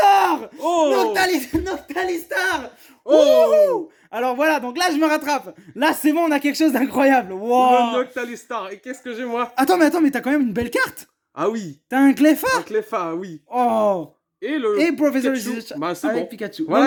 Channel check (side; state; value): both; identical; correlation 1.00